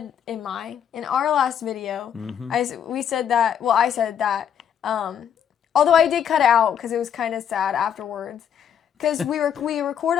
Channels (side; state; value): right; quieter; 8.7 dB